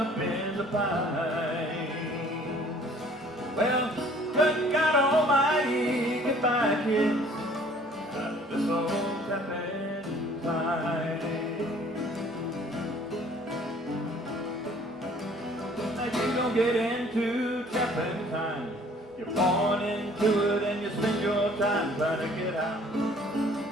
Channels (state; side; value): normal; both; correlation 0.55